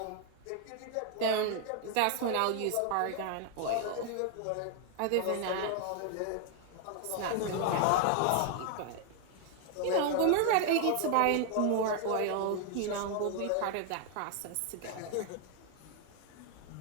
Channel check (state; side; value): different; both; correlation 0.00